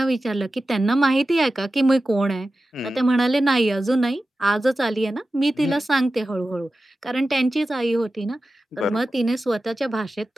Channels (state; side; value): normal; both; correlation 0.94